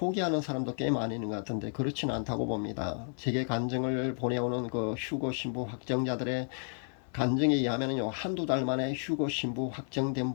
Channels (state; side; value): silent; right; 56 dB below the other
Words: 사람도 꽤 많이 있는 것 같은데 그렇지는 않다고 봅니다. 제게 간증을 보내오는 휴거 신부 확정자들의 간증에 의하면요, 한두 달 만에 휴거 신부 확정된